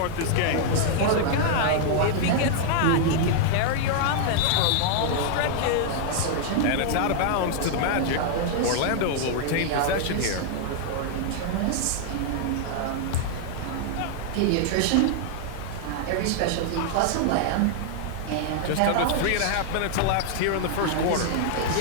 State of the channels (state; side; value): different; both; correlation -0.01